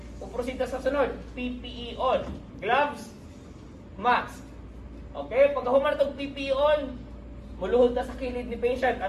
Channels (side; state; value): both; identical; correlation 1.00